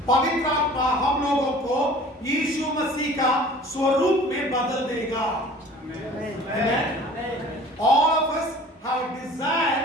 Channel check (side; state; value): both; normal; correlation 0.46